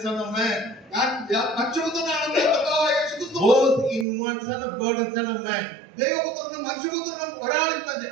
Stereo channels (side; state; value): left; drops out; at 4.0 s